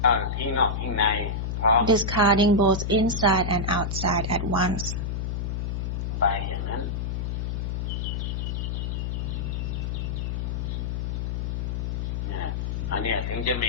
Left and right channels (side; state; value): left; noise; hum, 2 dB below the sound